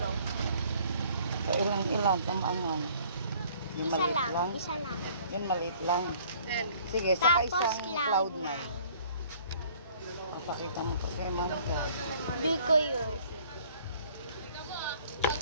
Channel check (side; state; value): both; inverted; correlation -0.56